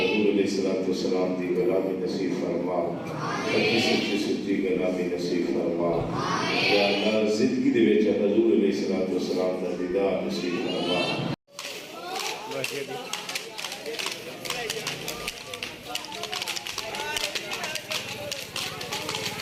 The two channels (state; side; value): identical; both; correlation 1.00